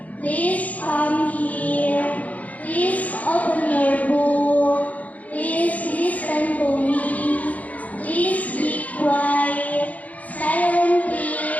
Please come here. Please open your book. Please listen to me. Please be quiet. Silent,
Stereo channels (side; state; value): right; late; 0.073 ms